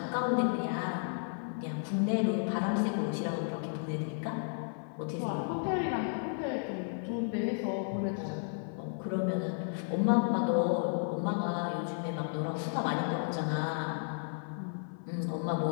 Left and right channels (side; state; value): right; silent; 56 dB below the other